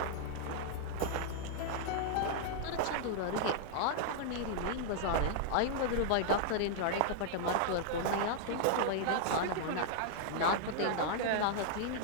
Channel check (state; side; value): different; both; correlation -0.01